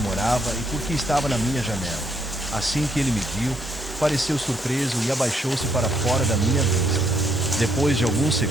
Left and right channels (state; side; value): normal; both; correlation 0.72